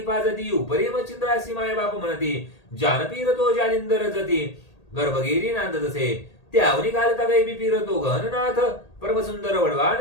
पाजती उपरी मच्छिंद्रासी माय बाप म्हणती. जानपीर तो जालिंदर जती गर्भगिरी नांदतसे. त्यावनी घालता गैबी पीर तो गहननाथ. परमसुंदर वडवा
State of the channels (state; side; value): late; right; 1.8 ms